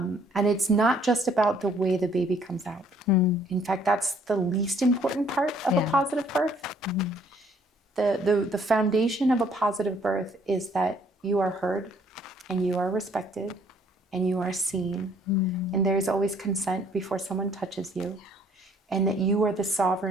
it's not just about the way the baby comes out. In fact, that's the least important part of a positive birth. The foundation of a positive birth is that you are heard and you are respected and you are seen. And there's always consent before someone touches you, and that you are the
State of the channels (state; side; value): normal; both; correlation 0.62